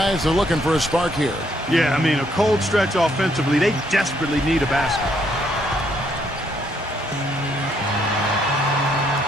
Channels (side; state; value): both; normal; correlation 0.71